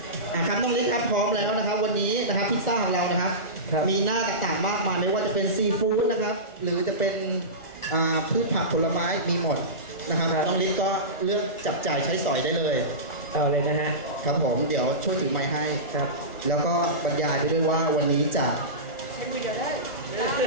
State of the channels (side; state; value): right; late; 1.4 ms